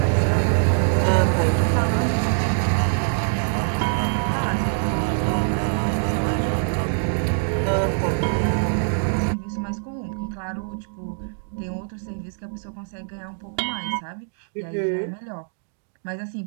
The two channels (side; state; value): left; silent; digital silence